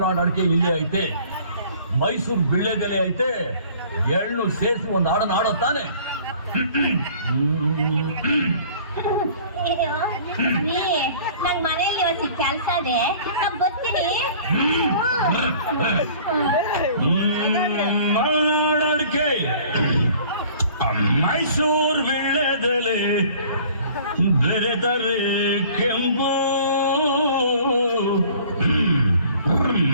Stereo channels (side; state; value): both; inverted; correlation -0.51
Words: ಅಡಿಕೆ ಇಲ್ಲೇ ಐತೆ, ಮೈಸೂರು ಬಿಳ್ಳೆದೆಲೆ ಐತೆ, ಎಳ್ಳು ಸೇರಿಸಿ ಒಂದು ಹಾಡನ್ನ ಆಡೋ ತಾನೆ. ನಂಗ್ ಮನೆಯಲ್ಲಿ ಇವತ್ತು ಕೆಲಸ ಇದೆ, ಬರ್ತೀನಿ. ಮಲ್ನಾಡ್ ಅಡಿಕೆ, ಮೈಸೂರು ಬಿಳ್ಳೆದೆಲೆ, ಬೆರೆದರೆ ಕೆಂಪು,